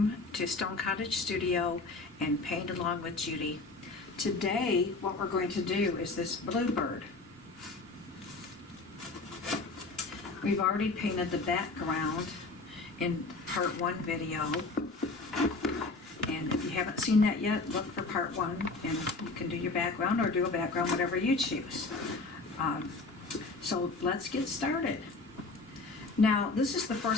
to Stone Cottage Studio and Paint Along with Judy. Today what we're going to do is this Bluebird. We've already painted the background in part 1 video, and if you haven't seen that yet, look for part 1 and you can do your background or do a background, whatever you choose. So let's get started. Now, this is the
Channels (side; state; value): right; quieter; 3.5 dB